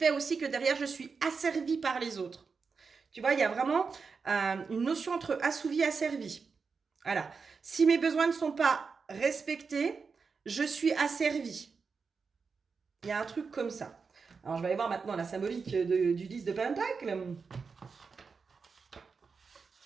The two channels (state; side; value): quieter; left; 5.1 dB